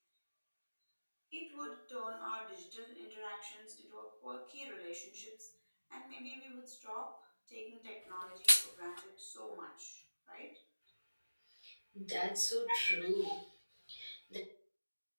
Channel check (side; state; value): both; inverted; correlation -1.00